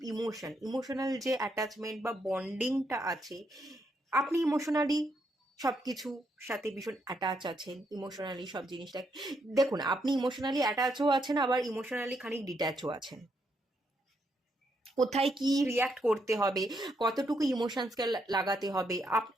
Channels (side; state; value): both; normal; correlation 0.77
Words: ইমোশনাল যে অ্যাটাচমেন্ট বা বন্ডিংটা আছে, আপনি ইমোশনালি সব কিছু সাথে ভীষণ অ্যাটাচ আছেন, ইমোশনালি সব জিনিসটা দেখুন, আপনি ইমোশনালি অ্যাটাচও আছেন, আবার ইমোশনালি খানিক ডিট্যাচও আছেন। কোথায় কি রিয়াক্ট করতে হবে, কতটুকু ইমোশনসকে লাগাতে হবে,